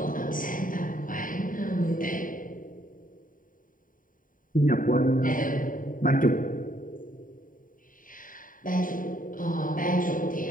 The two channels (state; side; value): late; right; 0.39 ms